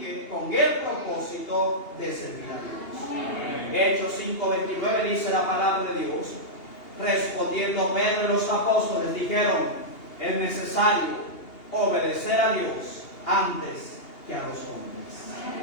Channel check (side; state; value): right; late; 2.8 ms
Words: con el propósito de servir a Dios. Amén. Hechos 5:29 dice la palabra de Dios: respondiendo Pedro y los apóstoles dijeron: es necesario obedecer a Dios antes que a los hombres.